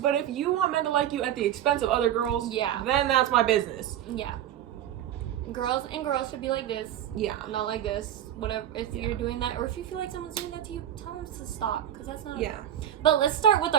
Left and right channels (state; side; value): quieter; left; 11.1 dB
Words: if you want men to like you at the expense of other girls, Yeah. then that's my business. Yeah. Girls should be like this. Yeah. Not like this. Whatever. If Yeah. you're doing that, or if you feel like someone's doing that to you, tell them to stop, because that's not. Yeah. But let's start with